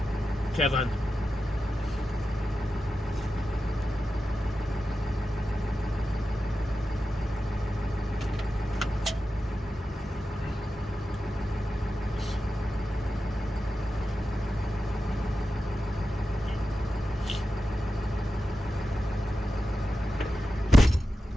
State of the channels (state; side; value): normal; both; correlation 0.92